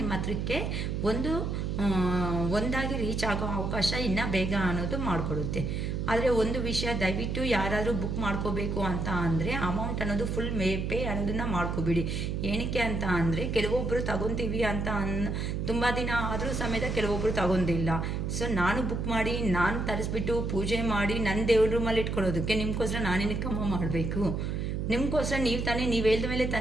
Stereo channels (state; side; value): noise; right; hum, 1 dB below the sound